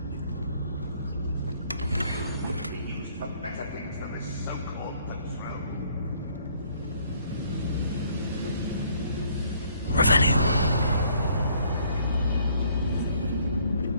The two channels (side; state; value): both; inverted; correlation -0.62